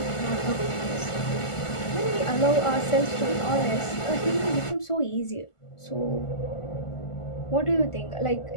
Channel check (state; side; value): late; right; 1.5 ms